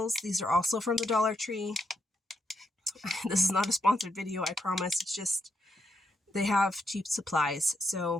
These are also from the Dollar Tree. This is not a sponsored video, I promise. It's just they have cheap supplies.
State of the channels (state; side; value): normal; both; correlation 0.80